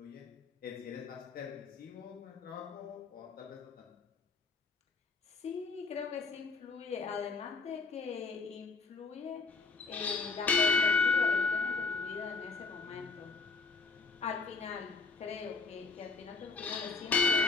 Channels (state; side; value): quieter; right; 4.2 dB